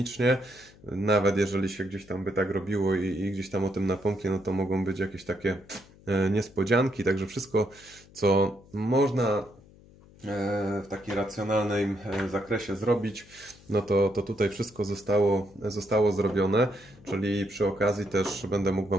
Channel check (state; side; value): noise; left; hum, 24 dB below the sound